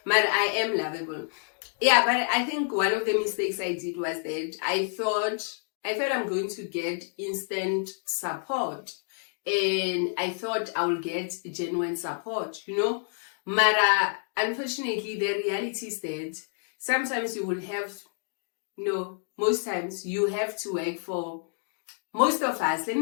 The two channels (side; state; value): right; silent; 59 dB below the other